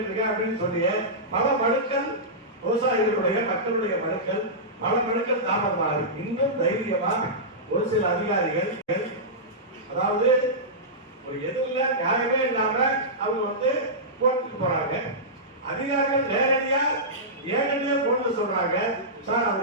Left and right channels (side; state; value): both; normal; correlation -0.15